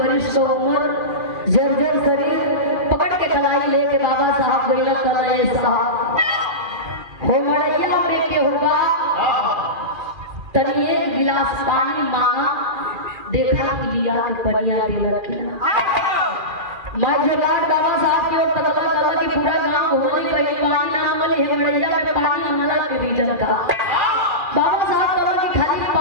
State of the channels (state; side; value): late; left; 2.4 ms